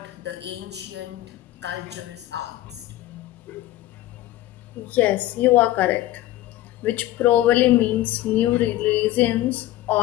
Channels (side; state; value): right; quieter; 15.2 dB